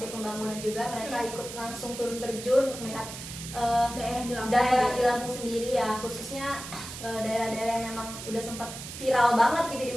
Pembangunan juga, mereka ikut langsung turun terjun untuk melihat daerah di Lampung sendiri ya, khususnya daerah-daerah yang memang udah sempat viral banget gitu di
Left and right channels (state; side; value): noise; right; hiss, 10 dB below the sound